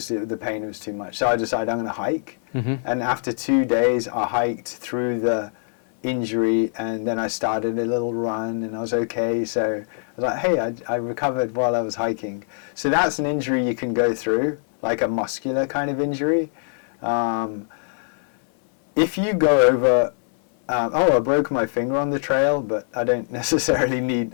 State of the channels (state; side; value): silent; right; 64 dB below the other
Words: pain was too much. So I decided I'm going to hike. And after 2 days, I hiked through the injury, and then I started a little run, and I was okay. So I was like, hey, I recovered while I was hiking. So that's an injury you can go through, like a muscular kind of injury. If you go over, I broke my finger on the trail, but I don't necessarily